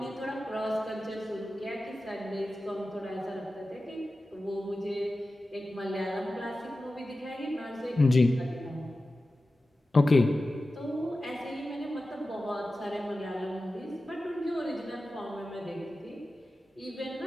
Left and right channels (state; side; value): normal; both; correlation 0.94